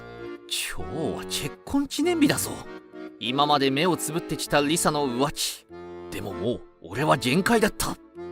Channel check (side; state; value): both; identical; correlation 1.00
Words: 今日は結婚記念日だぞ。今まで目をつぶってきたリサの浮気。でももう俺は限界だった。